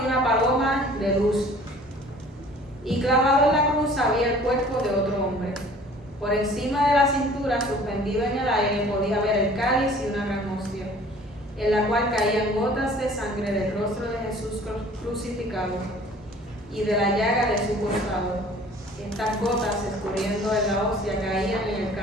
una paloma de luz, y clavado en la cruz había el cuerpo de otro hombre. Por encima de la cintura, suspendido en el aire, podía ver el cáliz y una gran hostia, en la cual caían gotas de sangre del rostro de Jesús crucificado y de la llaga de su costado. Estas gotas, escurriendo en la hostia, caían en el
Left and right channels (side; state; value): both; normal; correlation 0.50